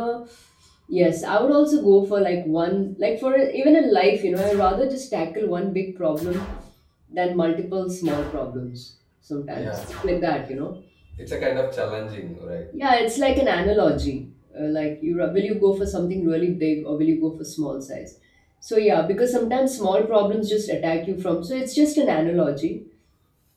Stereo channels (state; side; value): identical; both; correlation 1.00